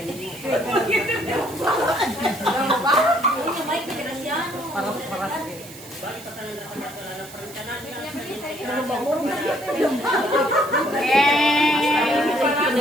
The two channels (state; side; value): noise; right; hiss, 17 dB below the sound